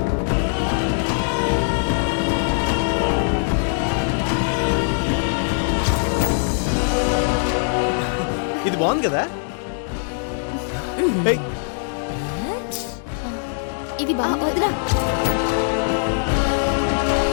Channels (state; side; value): silent; right; digital silence